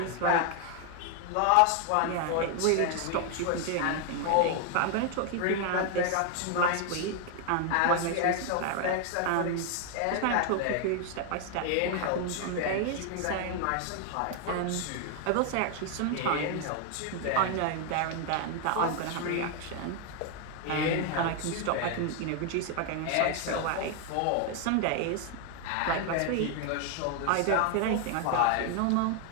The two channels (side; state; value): both; different; correlation 0.00